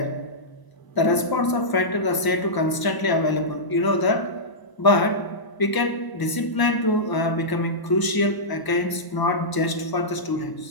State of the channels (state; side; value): late; right; 1.0 ms